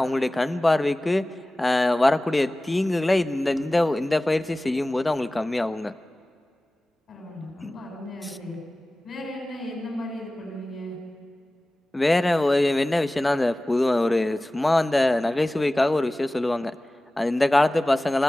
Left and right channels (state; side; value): normal; both; correlation 0.97